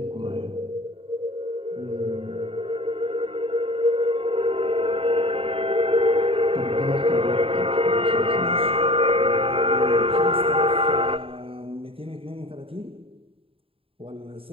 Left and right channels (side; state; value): left; late; 0.27 ms